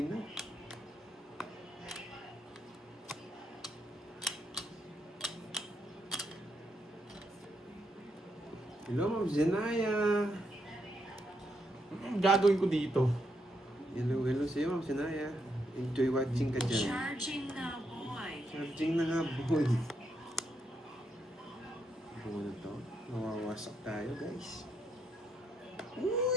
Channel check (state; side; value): normal; both; correlation 0.79